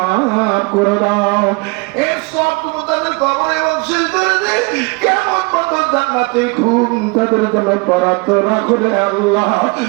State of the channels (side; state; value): left; quieter; 28.6 dB